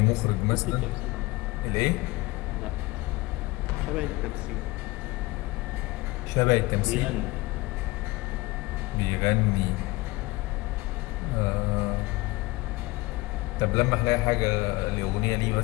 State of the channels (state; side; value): quieter; right; 21.8 dB